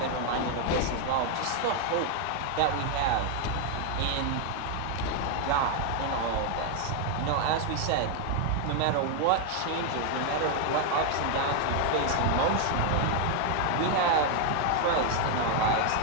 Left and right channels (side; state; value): both; different; correlation 0.01